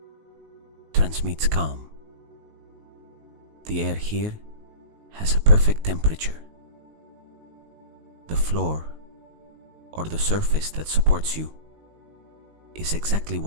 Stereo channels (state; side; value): late; left; 19 ms